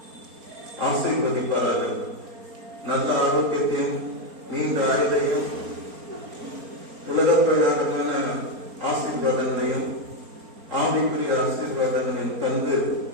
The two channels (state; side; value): late; left; 4.3 ms